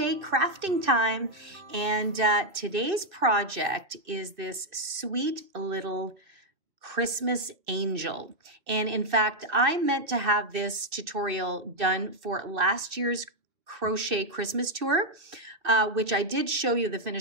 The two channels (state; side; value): late; left; 2.6 ms